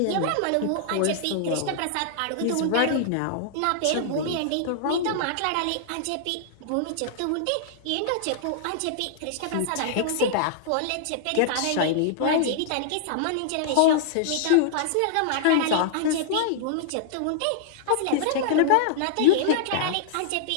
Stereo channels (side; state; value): both; different; correlation -0.01